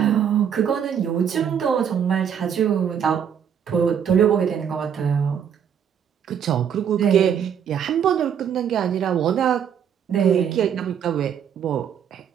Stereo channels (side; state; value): left; quieter; 8.3 dB